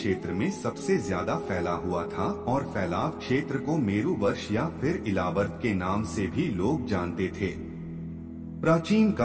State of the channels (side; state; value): both; identical; correlation 1.00